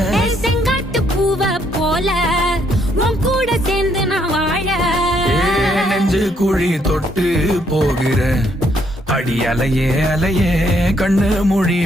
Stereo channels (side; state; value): both; normal; correlation 0.71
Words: செங்காட்டு பூவ போல உன் கூட சேர்ந்து நான் வாழ. நெஞ்சு குழி தொட்டு போகிற அடி அலையே அலையே கண்ணு மொழி